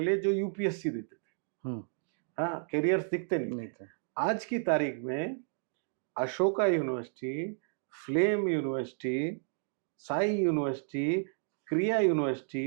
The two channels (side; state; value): left; silent; digital silence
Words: जो यूपीएससी देते थे. हाँ, कैरियर्स दिखते नहीं थे. आज की तारीख में Ashoka university, flame university, Sai university, क्रिया